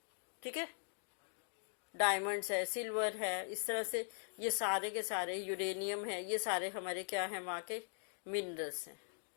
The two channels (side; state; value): right; silent; digital silence